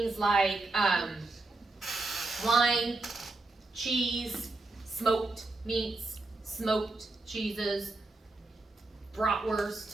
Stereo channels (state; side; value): quieter; left; 3.2 dB